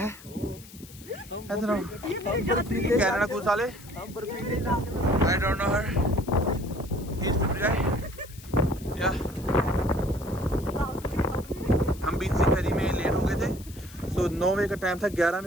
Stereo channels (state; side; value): noise; left; hiss, 19 dB below the sound